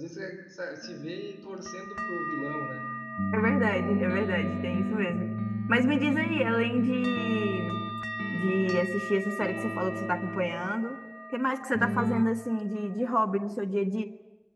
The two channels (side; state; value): both; identical; correlation 1.00